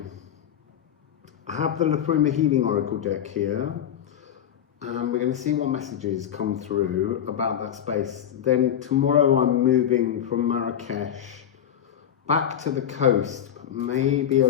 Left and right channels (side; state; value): right; quieter; 9.7 dB